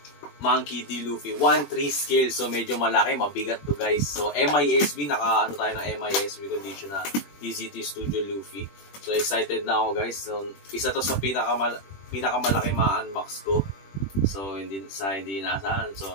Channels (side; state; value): right; late; 21 ms